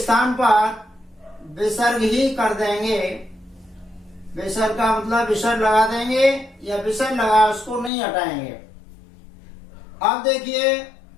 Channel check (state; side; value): drops out; right; at 7.9 s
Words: पर विसर्ग ही कर देंगे। विसर्ग का मतलब विसर्ग लगा देंगे, या विसर्ग लगा उसको नहीं हटाएंगे। अब देखिए